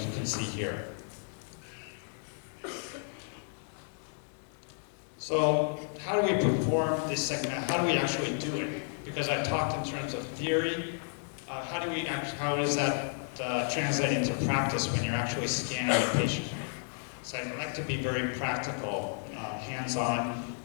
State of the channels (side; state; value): right; silent; 56 dB below the other